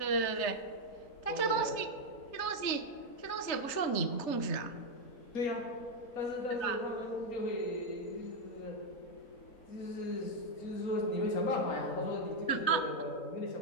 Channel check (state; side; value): late; right; 3.4 ms